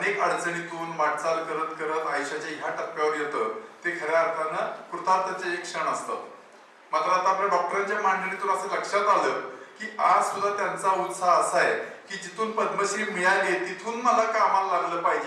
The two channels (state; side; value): identical; both; correlation 1.00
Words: अडचणीतून वाटचाल करत करत आयुष्याच्या ह्या टप्प्यावर येतं ते खऱ्या अर्थानं कृतार्थाचे एक क्षण असतात. मात्र आता आपल्या डॉक्टरांच्या मांडणीतून असं लक्षात आलं की आज सुद्धा त्यांचा उत्साह असा आहे की जिथून पद्मश्री मिळाली तिथून मला कामाला लागलं